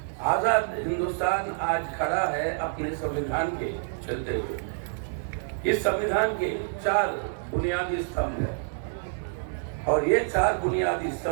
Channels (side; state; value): left; silent; digital silence